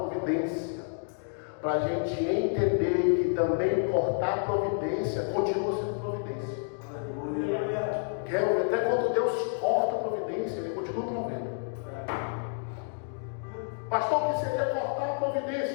Para a gente entender que também cortar a providência continua sendo providência. Até quando Deus corta a providência, Ele continua provendo. Pastor, o que seria cortar a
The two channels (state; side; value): silent; right; digital silence